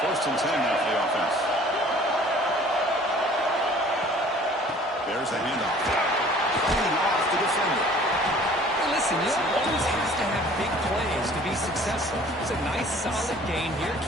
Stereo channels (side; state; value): both; normal; correlation 0.51